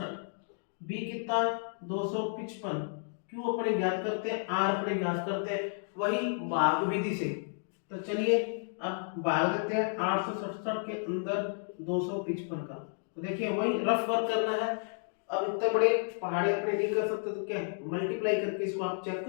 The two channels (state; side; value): silent; right; digital silence